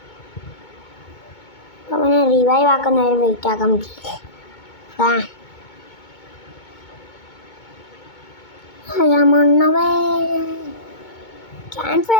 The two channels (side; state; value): right; late; 2.2 ms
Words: അപ്പോൾ അവനെ റിവൈവ് ആക്കുന്ന നേരം വെയിറ്റ് ആക്കാൻ പറ്റില്ല. ക്യാമ്പ്